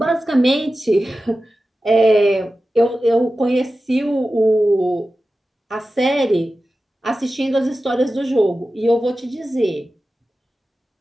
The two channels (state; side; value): normal; both; correlation 0.94